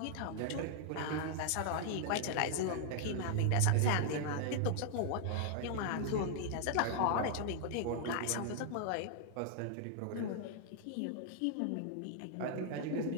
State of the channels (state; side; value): different; both; correlation -0.01